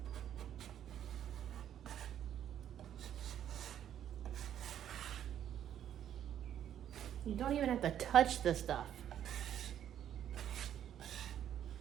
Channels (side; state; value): left; quieter; 10.3 dB